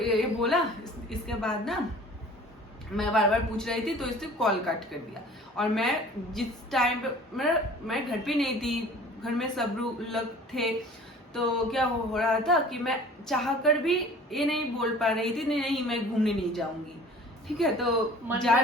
बोला, इसके बाद ना मैं बार पूछ रही थी, तो इसने कॉल कट कर दिया। और मैं जिस टाइम पे मैं घर पे नहीं थी, घर में सब लोग थे, तो क्या हो रहा था कि मैं चाह कर भी ये नहीं बोल पा रही थी, नहीं मैं घूमने नहीं जाऊंगी, ठीक है। तो मन जा में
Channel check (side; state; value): both; normal; correlation 0.47